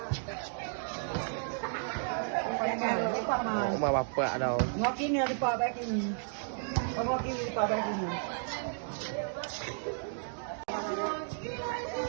Rumah bapak dah. Ngopi ni ada pak baik ini. Ngopi ni pak baik ini.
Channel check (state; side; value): silent; left; digital silence